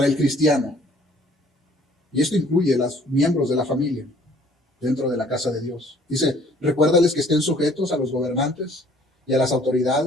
el cristiano. Y esto incluye a los miembros de la familia dentro de la casa de Dios. Dice, recuérdales que estén sujetos a los gobernantes y a las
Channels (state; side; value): normal; both; correlation 0.57